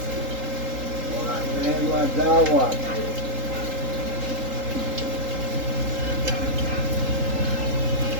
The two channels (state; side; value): late; left; 3.8 ms